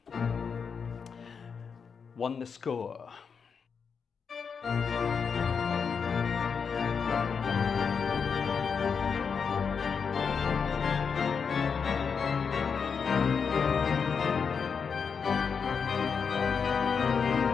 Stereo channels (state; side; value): quieter; right; 6.1 dB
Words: won the score.